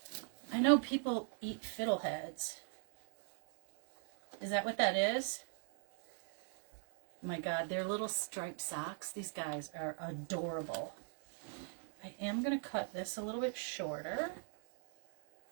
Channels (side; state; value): left; silent; 50 dB below the other